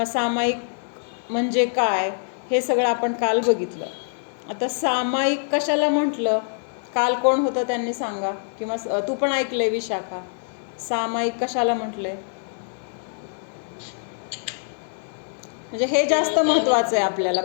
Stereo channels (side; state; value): right; silent; digital silence